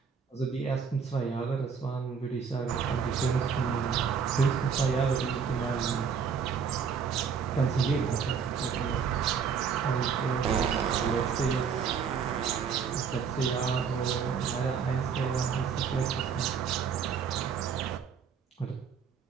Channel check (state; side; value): quieter; left; 6.5 dB